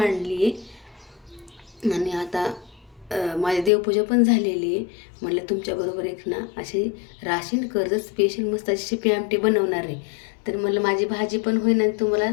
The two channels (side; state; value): right; drops out; at 3.7 s